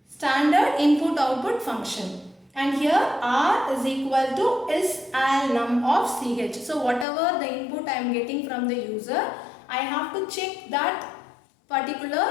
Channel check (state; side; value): drops out; right; at 7.1 s